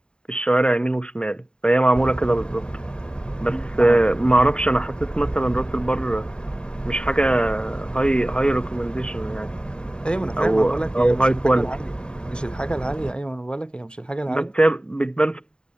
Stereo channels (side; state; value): right; late; 0.049 ms